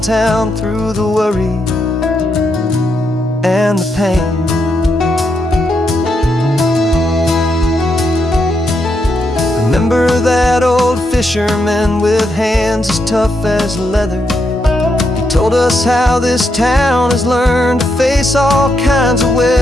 through the worry and the pain. Remember that old fisherman with hands as tough as leather? He told us how this town has learned to face all kinds of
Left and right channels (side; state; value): both; normal; correlation 0.81